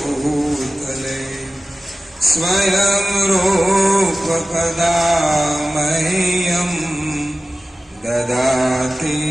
स्वयं रूप कदा मह्यं ददाति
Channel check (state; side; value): normal; both; correlation 0.96